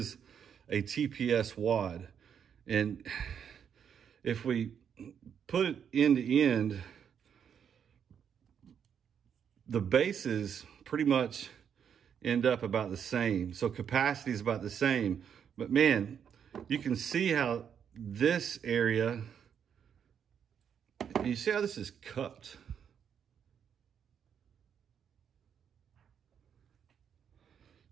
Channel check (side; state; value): left; quieter; 8.0 dB